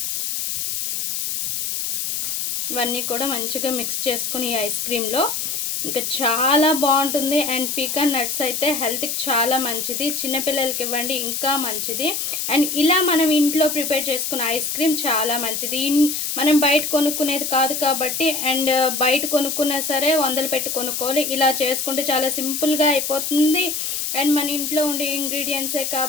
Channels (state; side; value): noise; left; hiss, 2 dB below the sound